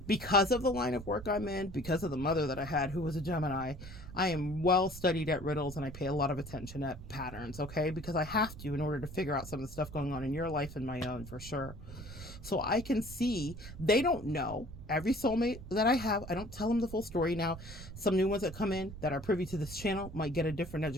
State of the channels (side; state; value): right; noise; rumble, 13 dB below the sound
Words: Because of the line of work I'm in, because of the mother that I had who was a Gemini, I am well studied at riddles and I pay a lot of attention at patterns, okay? Because I have to in order to figure out some of the stuff going on in your life and my own, for sure. So I can see they don't know. Every soulmate that I have, I don't tell them the full story. Now, some new ones that come in that are privy to this channel might get a different